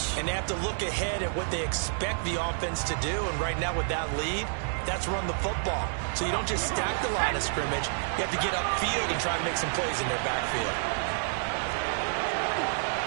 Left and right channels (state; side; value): silent; left; digital silence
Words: And they have to look ahead at what they expect the offense to do. And right now with that lead, that's run the football. So you don't just stack the line of scrimmage. You have to get upfield and try to make some plays in their backfield.